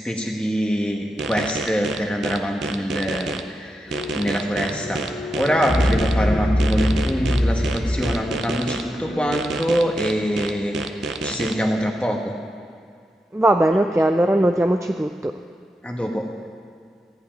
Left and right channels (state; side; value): normal; both; correlation 0.87